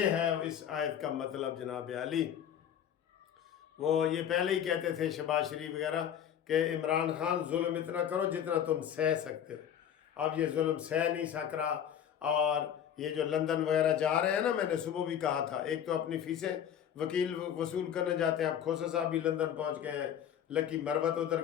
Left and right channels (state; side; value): quieter; right; 9.3 dB